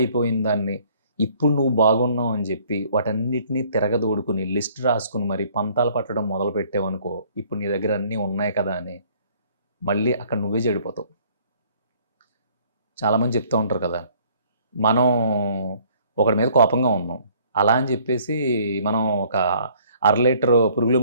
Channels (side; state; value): both; inverted; correlation -0.59